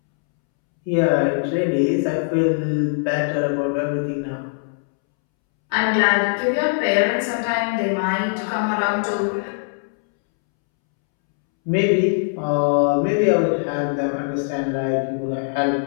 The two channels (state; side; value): silent; right; 65 dB below the other